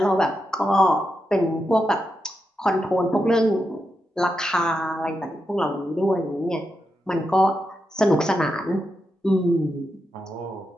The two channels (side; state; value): both; normal; correlation 0.86